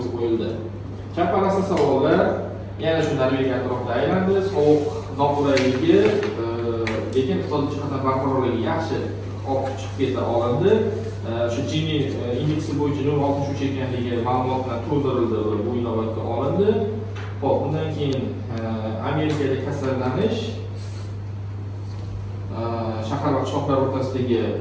qo'yildi. Chaparasi savollar yana shu Norvegiya atrofida aylandi. Sovuq noqulayligi, lekin iqtisodiy jihatdan barqarorligi yaxshi olib chiqib keta olindi. Shu Gini indeksi bo'yicha 0.63 ekanligi ma'lumot bilan to'ldirildi va bu inobatga olindi. Xo'p, bundan keyin Amerikada kasallanish, shahar va qishloqlar o'rtasidagi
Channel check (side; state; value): both; identical; correlation 1.00